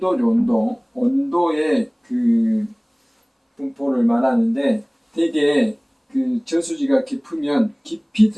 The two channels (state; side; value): identical; both; correlation 1.00